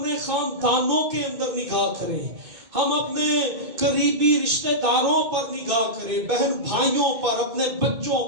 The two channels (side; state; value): left; late; 2.2 ms